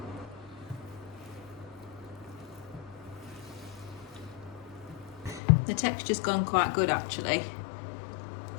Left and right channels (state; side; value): drops out; right; at 5.4 s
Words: The texture's gone quite good actually.